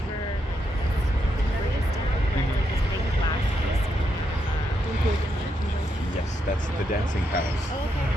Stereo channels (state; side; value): normal; both; correlation 0.80